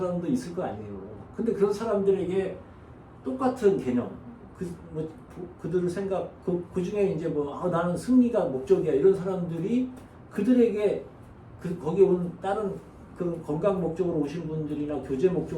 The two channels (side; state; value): both; identical; correlation 1.00